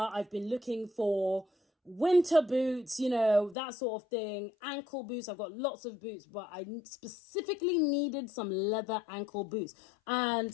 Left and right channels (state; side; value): drops out; right; at 3.6 s